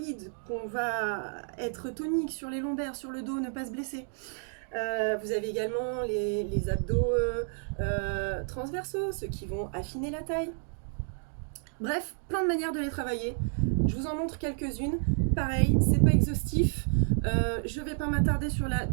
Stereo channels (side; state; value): left; silent; 57 dB below the other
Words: qu'on va être tonique sur les lombaires, sur le dos, ne pas se blesser. Vous avez également les abdos transversaux, ceux qui vont affiner la taille. Bref, plein de manières de les travailler. Je vous en montre quelques-unes. Pareil, c'est pas exhaustif. Je vais pas m'attarder sur la